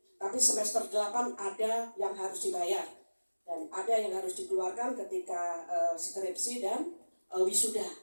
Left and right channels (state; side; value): inverted; both; correlation -1.00